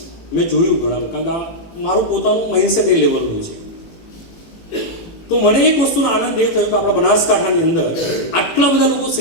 મેં જોયું ઘણા, કારણ કે મારું પોતાનું માઇન્ડસેટ એ લેવલનું છે. તો મને એક વસ્તુનો આનંદ એ થયો કે આપણા બનાસકાંઠાની અંદર આટલા બધા લોકો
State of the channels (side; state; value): right; late; 18 ms